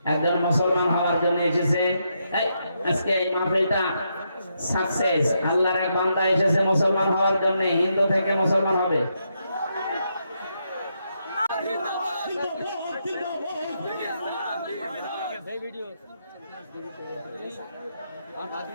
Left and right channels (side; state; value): both; inverted; correlation -0.80